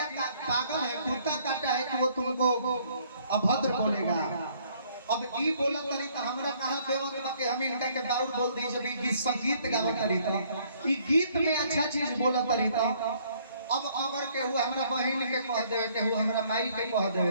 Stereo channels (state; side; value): inverted; both; correlation -0.63